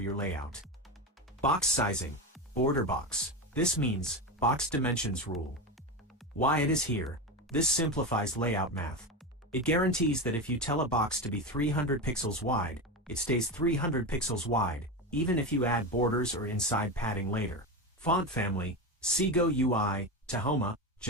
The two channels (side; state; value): both; normal; correlation 0.19